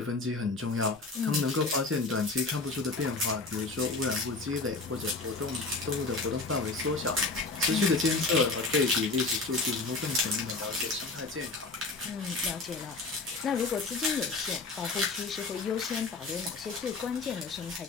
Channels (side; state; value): right; quieter; 3.6 dB